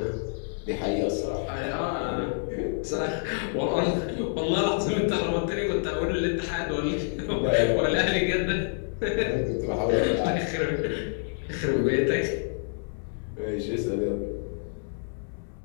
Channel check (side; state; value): right; silent; 60 dB below the other